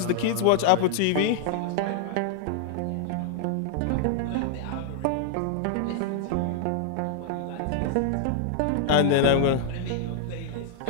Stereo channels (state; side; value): different; both; correlation -0.01